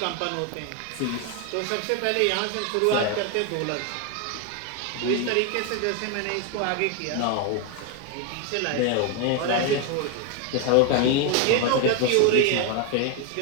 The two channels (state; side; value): different; both; correlation 0.01